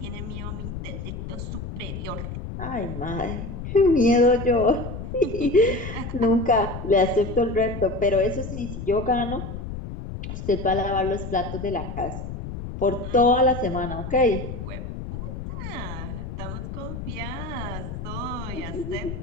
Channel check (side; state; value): left; noise; rumble, 7 dB below the sound